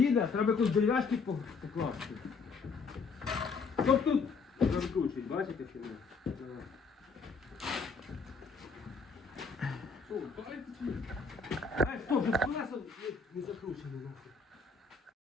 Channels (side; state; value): right; quieter; 4.7 dB